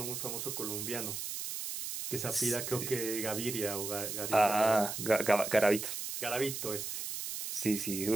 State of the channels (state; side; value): noise; right; hiss, 5 dB below the sound